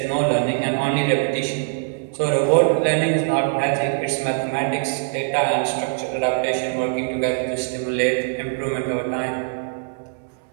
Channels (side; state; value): left; silent; 64 dB below the other